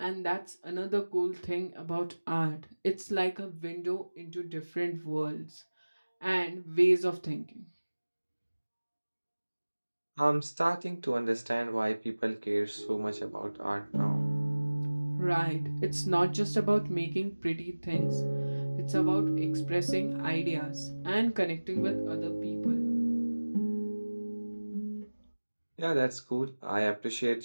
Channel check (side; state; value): both; inverted; correlation -1.00